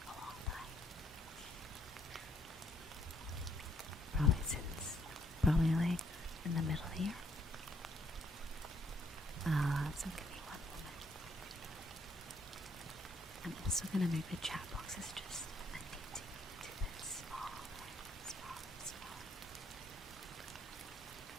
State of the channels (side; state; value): both; normal; correlation 0.69